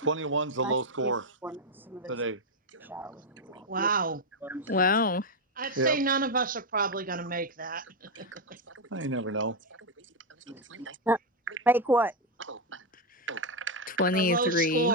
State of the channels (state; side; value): normal; both; correlation 0.04